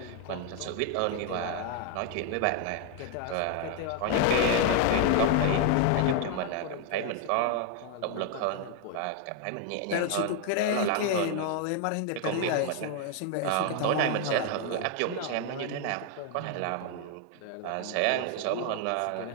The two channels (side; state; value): both; different; correlation 0.01